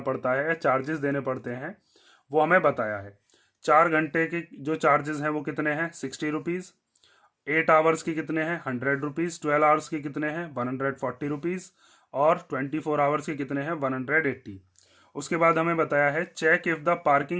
पड़ता है या चार्जेस देने पड़ते हैं, वो हमें बताया है। 4 घंटे के जो चार्जेस हैं वो कितने हैं, 60 रुपीज़। 8 आवर्स की कितने हैं, 100 रुपीज़। 12 आवर्स की कितने हैं, 140 रुपीज़। और 24 आवर्स के कितने हैं, 180। उसके बाद हमें बताया है check if the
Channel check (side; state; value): both; identical; correlation 1.00